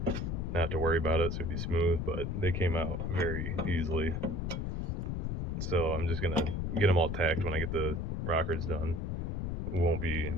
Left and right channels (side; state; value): left; noise; rumble, 1 dB below the sound